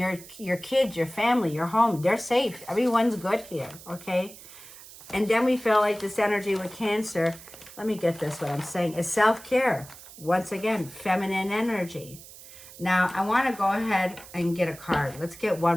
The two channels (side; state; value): right; noise; hiss, 18 dB below the sound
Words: kids, your family, your home, they're safe. Everyone's good here, okay? And then we feel like this energy with Cancer, let me get this, what I'm saying, is self-care. Once again, feminine energy. Now, I want to go ahead and get a card. Let's get